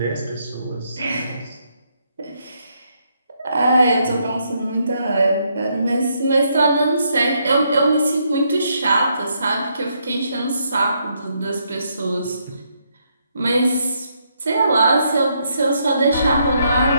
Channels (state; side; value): inverted; both; correlation -0.75